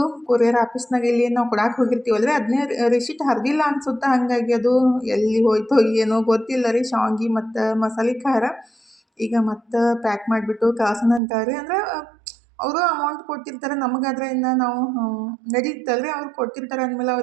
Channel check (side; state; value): left; drops out; at 11.2 s